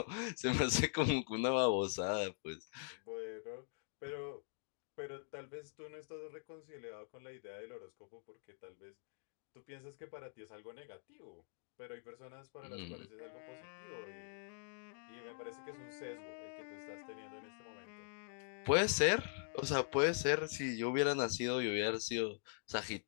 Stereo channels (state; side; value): silent; right; digital silence